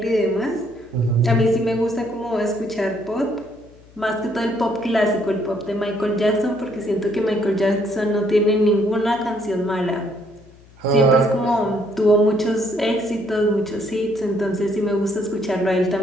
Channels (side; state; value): left; noise; hum, 25 dB below the sound